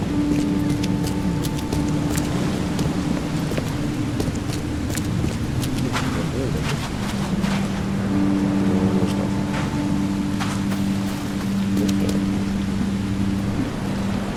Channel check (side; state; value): both; identical; correlation 1.00